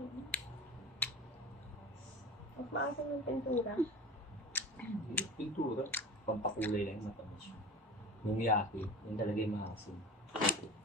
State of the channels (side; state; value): both; normal; correlation 0.33